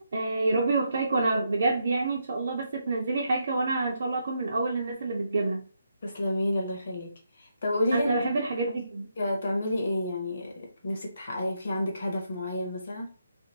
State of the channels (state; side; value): inverted; both; correlation -0.80